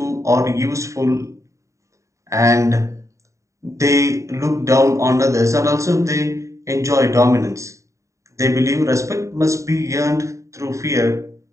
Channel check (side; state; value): left; late; 0.15 ms